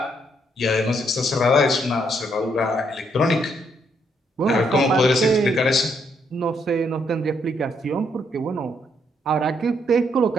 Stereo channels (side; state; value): both; normal; correlation 0.73